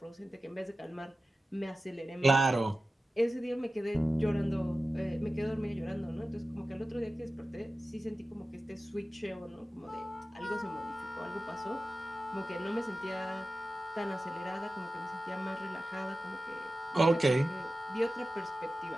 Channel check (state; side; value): normal; both; correlation 0.94